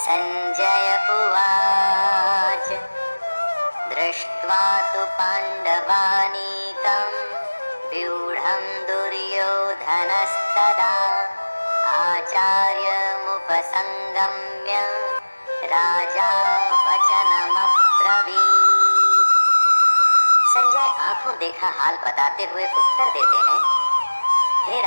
उवाच दृष्ट्वा तु पाण्डवानीकं व्यूढं दुर्योधनस्तदा आचार्यमुपसंगम्य राजा वचनमब्रवीत्। संजय आंखों देखा हाल बताते हुए उत्तर देते हैं, हे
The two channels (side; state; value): both; inverted; correlation -1.00